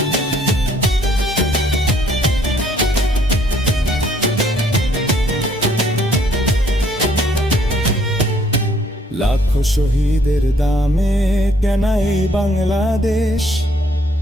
লাখো শহীদের দামে কেনা এই বাংলাদেশ?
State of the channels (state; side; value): normal; both; correlation 0.64